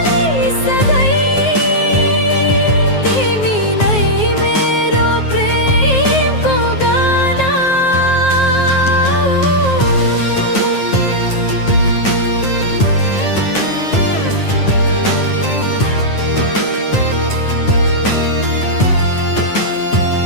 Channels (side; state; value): right; late; 9.5 ms